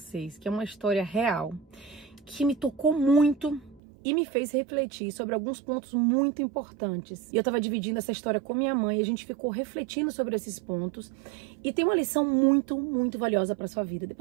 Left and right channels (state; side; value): drops out; left; at 3.8 s